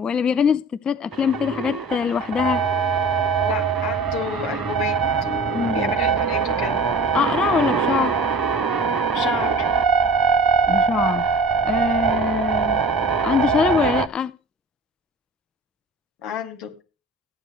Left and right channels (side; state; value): both; normal; correlation 0.41